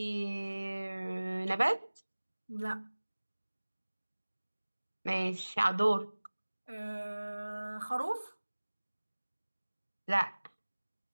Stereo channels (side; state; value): both; inverted; correlation -1.00